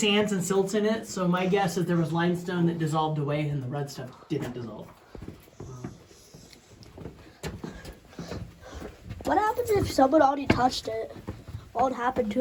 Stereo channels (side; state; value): both; identical; correlation 1.00